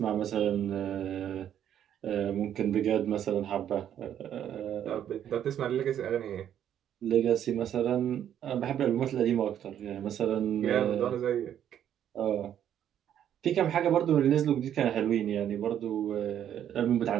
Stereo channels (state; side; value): quieter; left; 10.1 dB